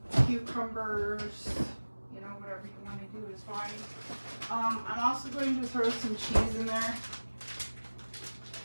cucumbers, you know, whatever you want to do is fine. I'm also going to throw some cheese in there.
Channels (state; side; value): inverted; both; correlation -1.00